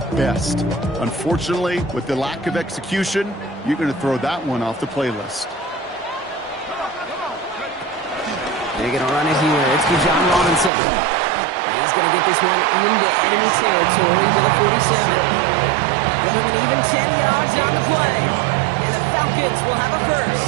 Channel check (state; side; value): drops out; left; at 10.7 s